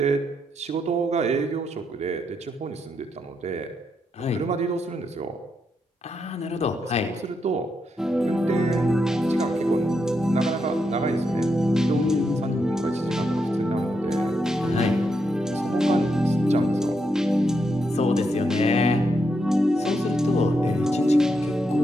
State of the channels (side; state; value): both; normal; correlation 0.82